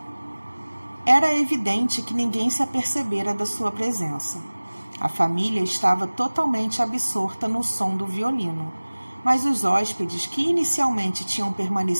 Era evidente que ninguém se apercebera da sua presença. A família estava totalmente absorta no som do violino, mas os hóspedes, que inicialmente tinham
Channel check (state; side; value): inverted; both; correlation -1.00